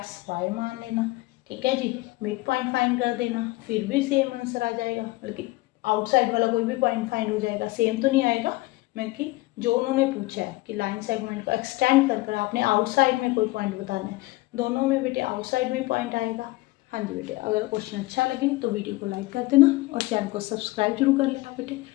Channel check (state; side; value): quieter; right; 20.5 dB